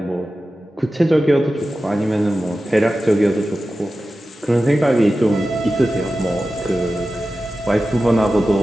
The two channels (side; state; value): both; normal; correlation 0.94